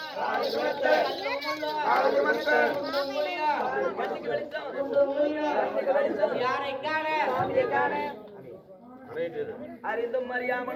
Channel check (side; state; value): both; identical; correlation 1.00